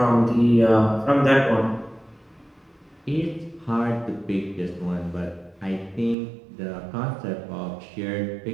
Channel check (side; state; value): left; drops out; at 6.2 s